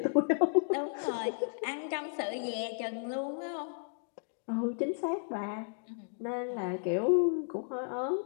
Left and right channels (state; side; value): silent; right; digital silence